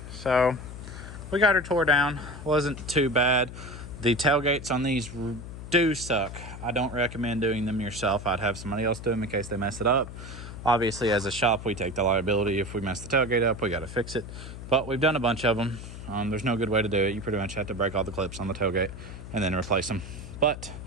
So we got her tore down. Wasn't too bad. The tailgates on these do suck. I don't recommend doing them yourself. I'd have somebody else do them in case they mess it up. Obviously, as a shop, we take the liability. If we mess the tailgate up, we got to fix it. But we've done a bunch of them. There's no good way to do it. You pretty much have to break all the clips on the tailgate and then replace them. But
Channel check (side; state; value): left; noise; hum, 11 dB below the sound